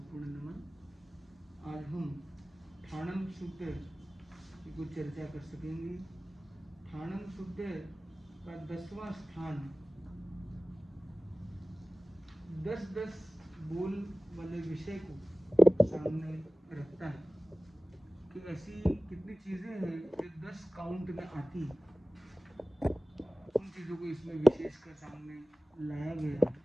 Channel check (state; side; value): normal; both; correlation 0.97